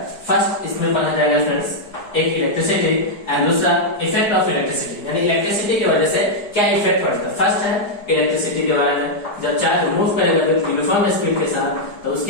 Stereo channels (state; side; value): late; right; 4.9 ms